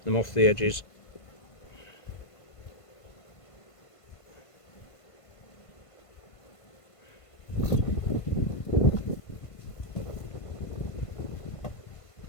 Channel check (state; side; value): late; right; 1.5 ms